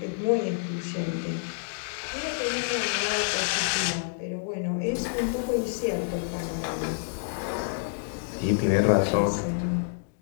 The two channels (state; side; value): silent; right; digital silence